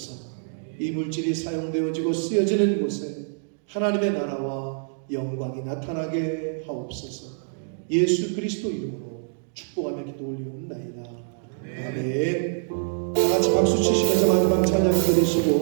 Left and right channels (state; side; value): silent; left; digital silence